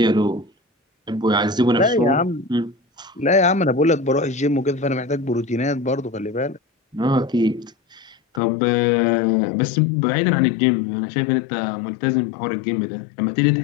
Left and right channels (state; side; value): drops out; right; at 8.4 s